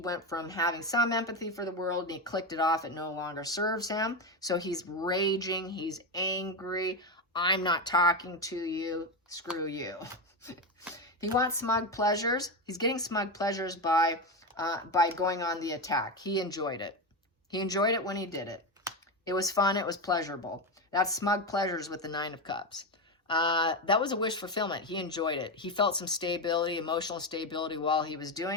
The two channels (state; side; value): normal; both; correlation 0.14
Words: went from having some empathy for the world and he clicked it off. It no longer serves him. So he's raging. He's angry. I'm not talking to you. Screw you. He wants smug pleasures. He's getting smug pleasures by going on the attack. He enjoyed it. He enjoyed it when he did it. It was fun. It was pleasurable. That's smug pleasures with the Nine of Cups. That was a wish fulfillment. He enjoyed it. He felt some stability, emotional stability while he was